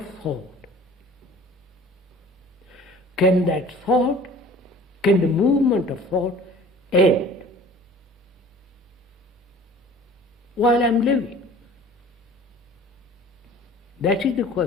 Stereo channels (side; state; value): both; normal; correlation 0.46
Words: thought. Can that thought, can the movement of thought end while I'm living? That is the